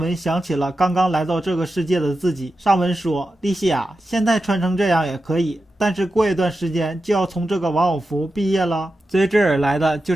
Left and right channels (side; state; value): both; normal; correlation 0.91